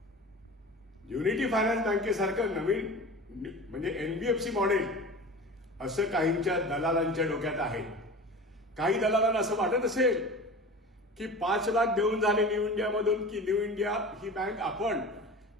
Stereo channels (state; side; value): normal; both; correlation 0.35